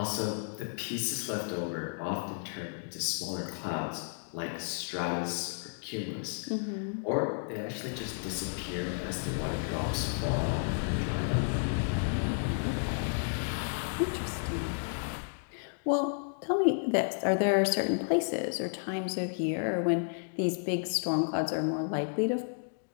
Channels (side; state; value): right; silent; digital silence